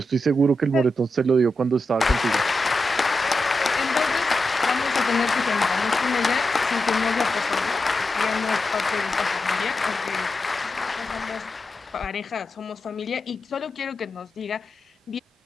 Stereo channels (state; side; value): normal; both; correlation 0.89